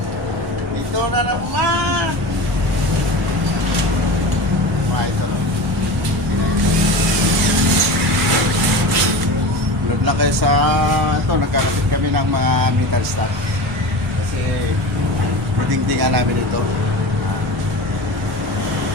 Dito na naman! Mga idol. Load lang kayo sa ito, nagkakapit kami ng mga metal stock. Kasi dingdingan namin ito.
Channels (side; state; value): both; normal; correlation 0.30